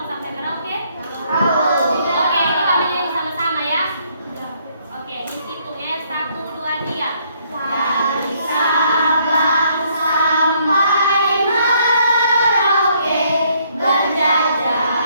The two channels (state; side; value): inverted; both; correlation -0.68